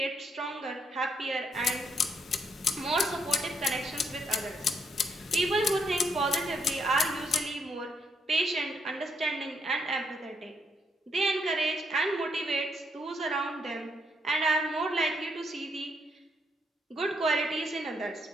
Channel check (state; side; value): normal; both; correlation 0.75